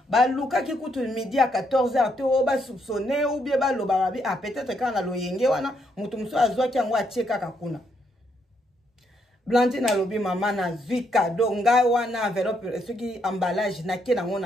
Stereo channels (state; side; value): normal; both; correlation 0.75